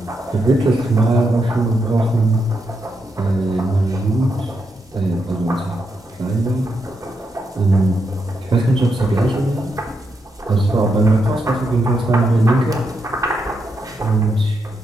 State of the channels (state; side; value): normal; both; correlation 0.82